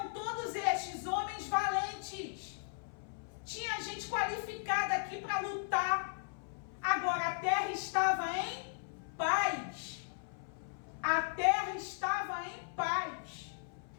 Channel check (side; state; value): right; silent; 53 dB below the other